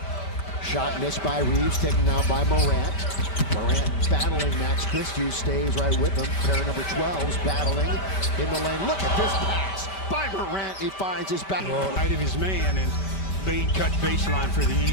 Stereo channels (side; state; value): right; late; 5.2 ms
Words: Shot missed by Reeves, taken now by Morant. Morant battling Max Christie, stays right with him. Pair number 12's battling in the lane. Look at this pass by Morant. He finds his back. Right of his man, and Bane cut baseline for the